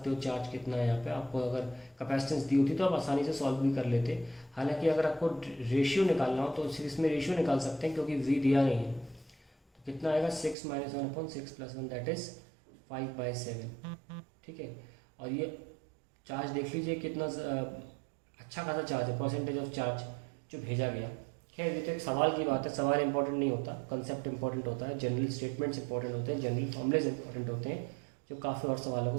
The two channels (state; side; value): drops out; left; at 10.6 s